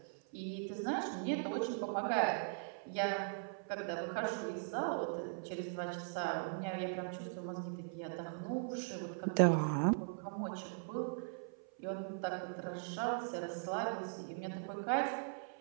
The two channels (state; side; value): silent; left; 51 dB below the other